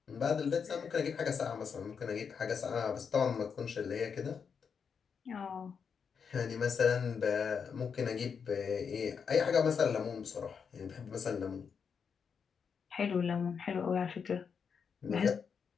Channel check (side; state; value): right; quieter; 6.4 dB